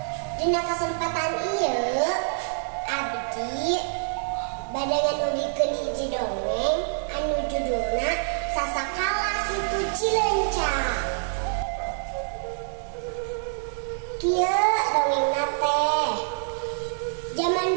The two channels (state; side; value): silent; left; digital silence